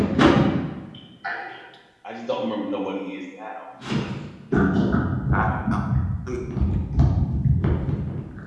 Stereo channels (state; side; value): identical; both; correlation 1.00